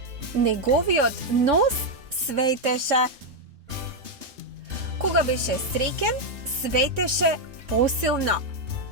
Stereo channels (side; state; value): left; late; 3.6 ms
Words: Неговиот нос светеше. Кога беше среќен, светеше посилно.